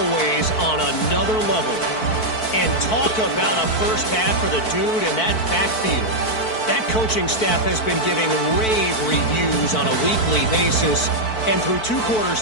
on another level. And talk about a first half for the dude in that backfield. That coaching staff has been giving rave reviews on a weekly basis. And through 2 quarters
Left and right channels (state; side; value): late; right; 4.5 ms